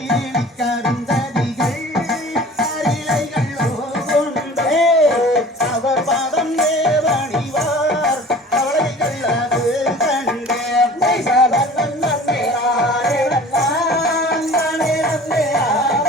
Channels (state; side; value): normal; both; correlation 0.44